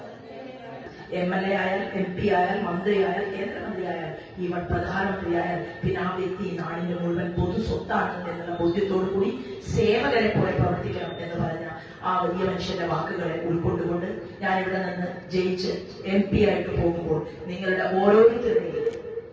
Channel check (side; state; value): both; identical; correlation 1.00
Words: MLA ആയാൽ MP ആയാൽ മന്ത്രിയായാൽ കേന്ദ്രമന്ത്രിയായാൽ ഈവൻ പ്രധാനമന്ത്രിയായാൽ പിന്നെ ആ വ്യക്തി നാടിന്റെ മുഴുവൻ പൊതു സ്വത്താണെന്ന് എന്നുള്ള ബോധ്യത്തോടു കൂടി സേവകരെ പോലെ പ്രവർത്തിക്കണം എന്ന് പറഞ്ഞ ആ വലിയ മനുഷ്യന്റെ വാക്കുകളെ ഉൾക്കൊണ്ടുകൊണ്ട് ഞാൻ ഇവിടെ നിന്ന് ജയിച്ച് MP ആയിട്ട് പോകുമ്പോൾ നിങ്ങളുടെ ഓരോരുത്തരുടെയും